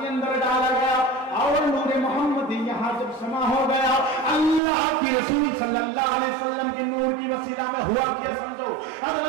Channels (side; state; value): left; drops out; at 4.6 s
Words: अंदर डाला गया और नूर मोहम्मदी यहाँ जब समा हो गया, अल्लाह की रसूल सल्लल्लाहु अलैहि वसल्लम की नूर की वसीला में हुआ क्या समझो,